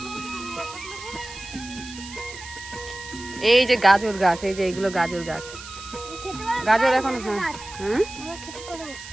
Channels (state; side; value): noise; right; hiss, 14 dB below the sound